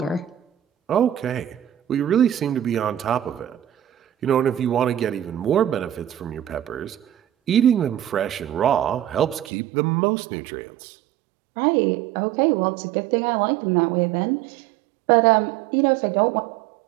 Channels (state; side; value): drops out; left; at 9.5 s